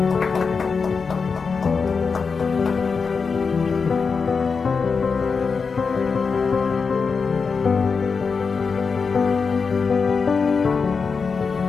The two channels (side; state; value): right; quieter; 5.1 dB